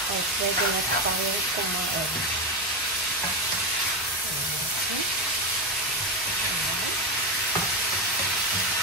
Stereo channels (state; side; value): normal; both; correlation 0.14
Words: Ay, pwede na tayong kumain.